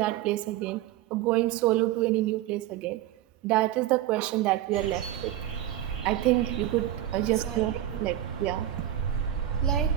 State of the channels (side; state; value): left; quieter; 12.8 dB